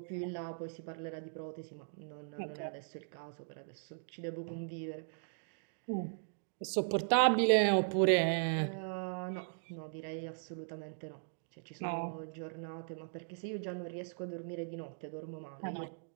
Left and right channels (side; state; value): left; silent; digital silence